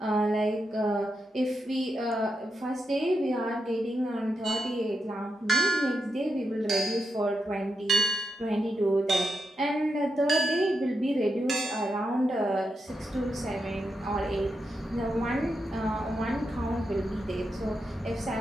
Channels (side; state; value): both; normal; correlation 0.85